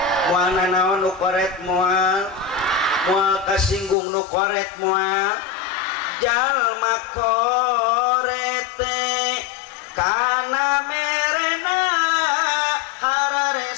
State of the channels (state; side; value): drops out; right; at 4.0 s